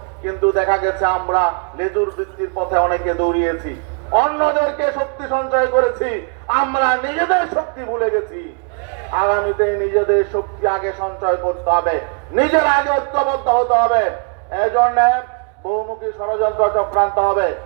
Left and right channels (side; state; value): left; quieter; 37.7 dB